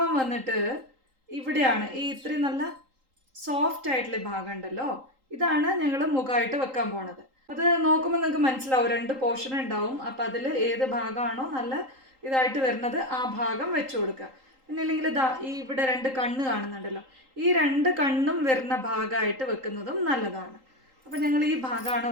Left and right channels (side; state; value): left; late; 3.8 ms